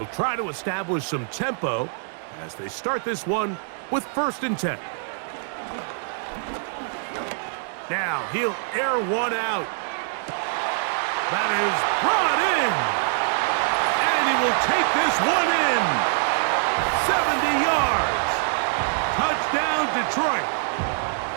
try to establish some tempo as they start this one with 1st and 10. Now he'll air one out. That is brought in. And he will take this one in. 70 yards. Touchdown, Detroit.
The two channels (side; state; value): left; silent; digital silence